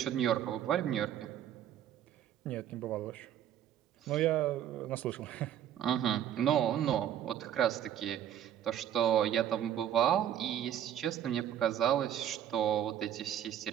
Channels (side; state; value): left; quieter; 10.5 dB